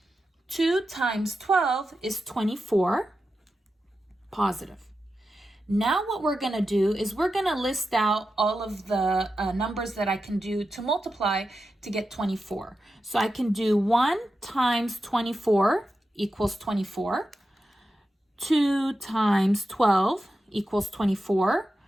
2 times 12 is 24, positive. Now what we're going to do is we're going to list out all of the numbers that I can do to multiply to get 24. So I can do 1 times 24 equals 24. 2 times 12 equals 24.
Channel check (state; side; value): normal; both; correlation 0.91